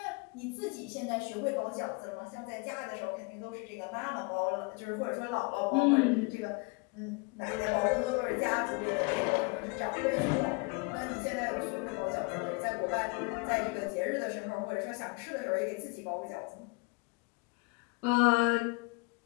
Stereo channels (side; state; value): right; quieter; 29.9 dB